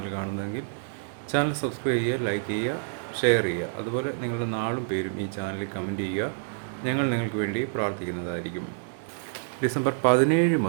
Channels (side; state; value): left; silent; digital silence